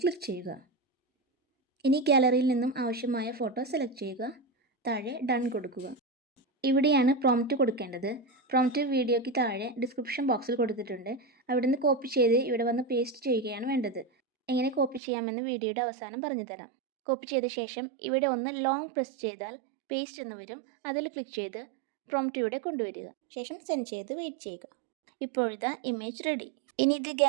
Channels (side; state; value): left; drops out; at 15.0 s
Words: ക്ലിക്ക് ചെയ്യുക. ഇനി ഗാലറിയിൽ നിന്നും ആവശ്യമായ ഫോട്ടോ സെലക്ട് ചെയ്യുക. താഴെ ഡൺ കൊടുക്കുക. ഇവിടെയാണ് പ്രോംപ്റ്റ് കൊടുക്കേണ്ടത്. പ്രോംപ്റ്റ് വീഡിയോയ്ക്ക് താഴെ ഡിസ്ക്രിപ്ഷൻ ബോക്സിൽ കൊടുത്തിട്ടുണ്ട്. അവിടെ നിന്ന് കോപ്പി ചെയ്ത് ഇവിടെ വന്ന് പേസ്റ്റ് ചെയ്യുകയാണ് വേണ്ടത്. എങ്ങനെ കോപ്പി ചെയ്യാമെന്ന് വീഡിയോയുടെ അവസാനം പറഞ്ഞു തരാം. കോപ്പി ചെയ്ത ശേഷം ഇവിടെ ഒന്ന് ലോങ് പ്രസ് ചെയ്താൽ പേസ്റ്റ് എന്ന് വരും. അതിൽ ക്ലിക്ക് ചെയ്ത് പ്രോംപ്റ്റ് ഇവിടെ കൊണ്ടുവരിക. ശേഷം സെൻഡ് ചെയ്ത് വെയിറ്റ് ചെയ്യുക. ഇപ്പോഴിതാ ഇമേജ് റെഡി. ഇനി ഇത്